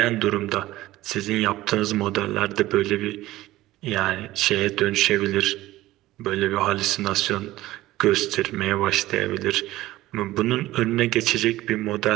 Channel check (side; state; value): left; quieter; 16.5 dB